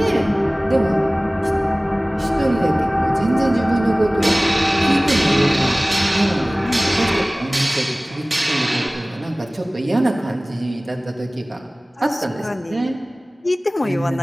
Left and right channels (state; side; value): normal; both; correlation 0.98